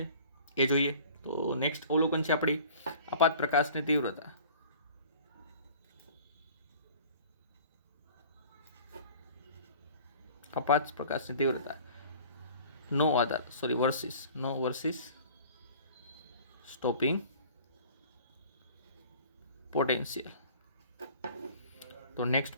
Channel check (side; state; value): both; inverted; correlation -0.47